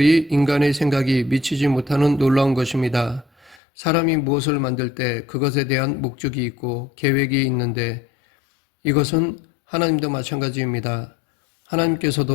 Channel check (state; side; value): drops out; right; at 3.6 s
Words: 인간의 생각이 미치지 못하는 놀라운 것입니다. 사람이 무엇을 만들 때 그것에 대한 목적이 있고 계획이 있는데 이것은 하나님도 마찬가지입니다.